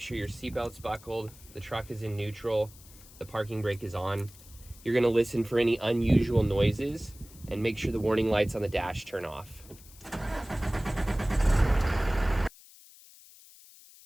your seatbelt's buckled, the truck is in neutral, the parking brake is on. You're going to listen for any unusual noises and make sure the warning lights on the dash turn off.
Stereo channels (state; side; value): noise; left; hiss, 22 dB below the sound